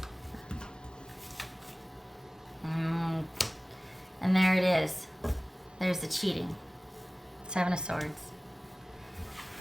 And there it is. There's the cheating. Seven of Swords.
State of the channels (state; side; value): normal; both; correlation 0.98